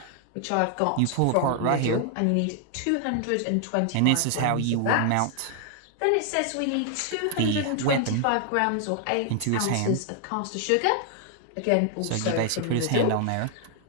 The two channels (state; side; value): different; both; correlation 0.00